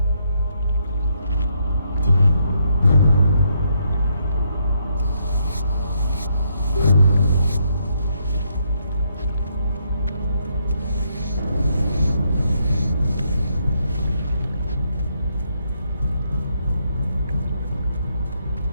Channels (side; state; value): both; inverted; correlation -0.75